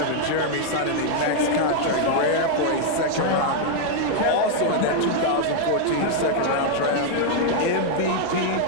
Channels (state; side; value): different; both; correlation 0.00